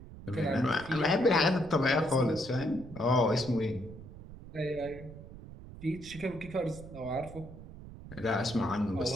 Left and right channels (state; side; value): noise; right; rumble, 15 dB below the sound